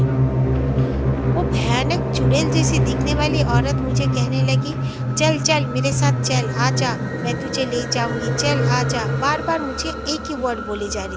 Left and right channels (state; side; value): identical; both; correlation 1.00